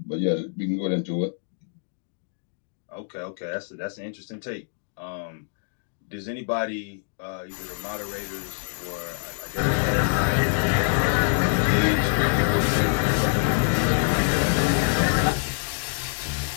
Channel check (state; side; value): silent; right; digital silence